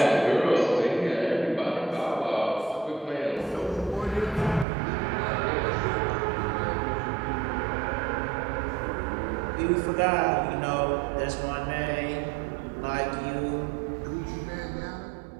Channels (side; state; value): left; drops out; at 4.7 s